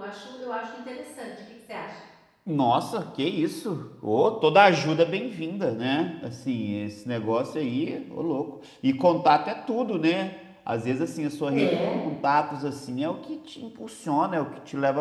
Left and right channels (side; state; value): both; identical; correlation 1.00